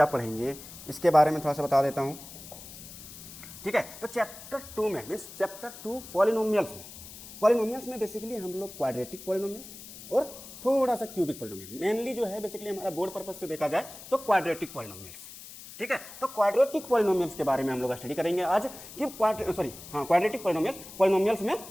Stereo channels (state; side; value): noise; left; hiss, 15 dB below the sound